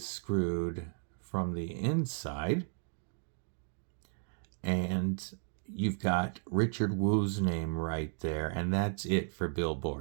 screwed from the inside, and you've got Richard Wu's name right there, and that's it for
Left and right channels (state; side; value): silent; left; digital silence